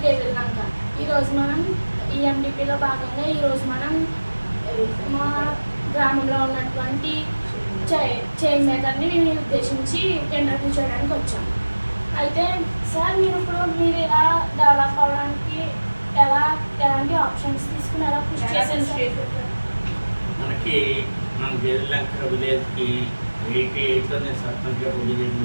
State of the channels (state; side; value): inverted; both; correlation -1.00